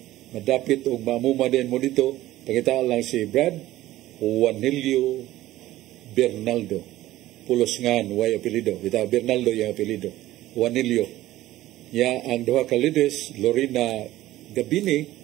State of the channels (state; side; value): quieter; left; 15.5 dB